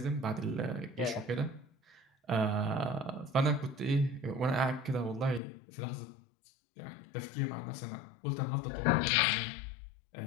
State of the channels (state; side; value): drops out; right; at 5.4 s